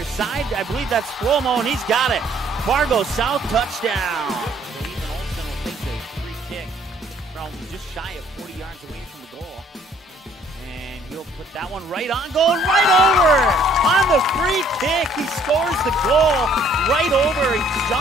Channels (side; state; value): both; normal; correlation 0.61